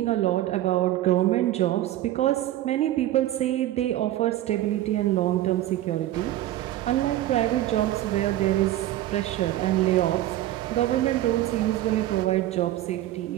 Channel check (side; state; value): left; quieter; 14.2 dB